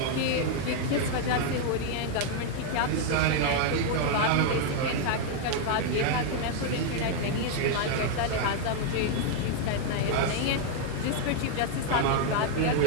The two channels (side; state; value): both; different; correlation 0.00